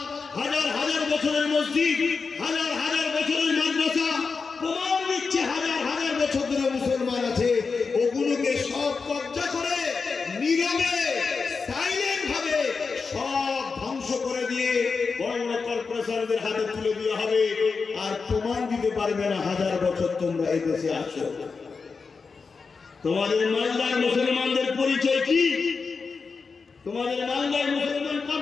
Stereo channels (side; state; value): right; quieter; 4.9 dB